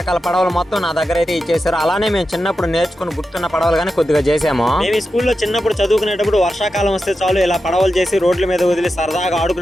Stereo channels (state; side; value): normal; both; correlation 0.90